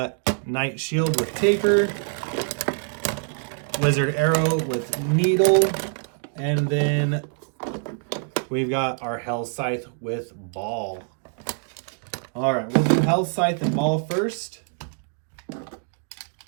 Night Shield with Taper, Wizard Arrow with Needle, and then we've got our Hell Scythe with Ball. All right, we'll do Hell Scythe and Ball first.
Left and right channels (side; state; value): left; silent; 56 dB below the other